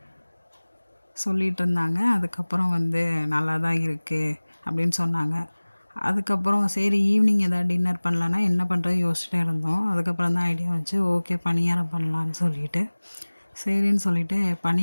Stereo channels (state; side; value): inverted; both; correlation -1.00